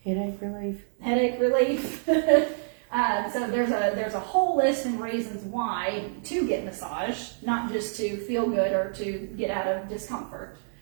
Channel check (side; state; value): left; silent; digital silence